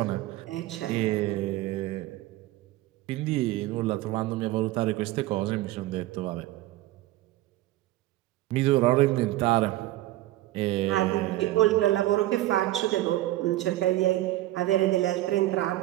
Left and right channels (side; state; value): left; quieter; 16.1 dB